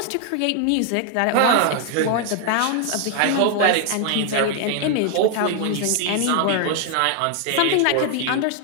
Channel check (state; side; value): different; both; correlation 0.00